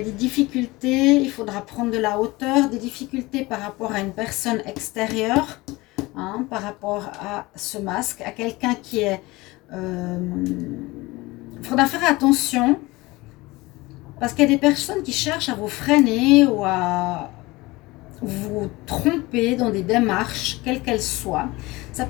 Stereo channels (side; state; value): right; quieter; 21.5 dB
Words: a des difficultés, il faudra prendre de la hauteur, des difficultés par rapport à une personne extérieure, hein, par rapport à ce masque, à quelqu'un qui est... il faudra faire attention, parce qu'il y a des personnes qui cherchent à vous freiner ou à vous tromper dans des démarches, quelles qu'elles soient. Ça